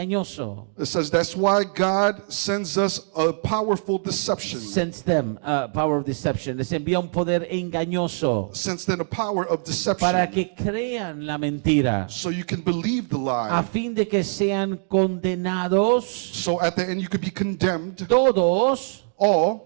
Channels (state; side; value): silent; left; digital silence